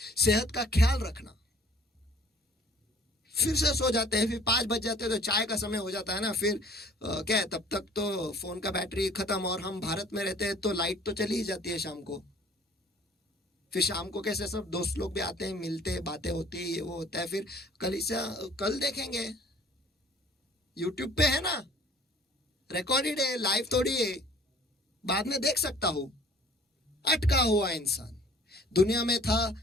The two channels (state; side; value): normal; both; correlation 0.53